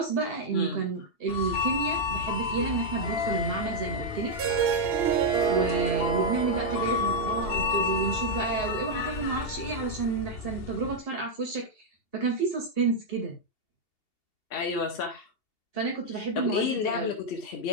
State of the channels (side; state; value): right; late; 2.7 ms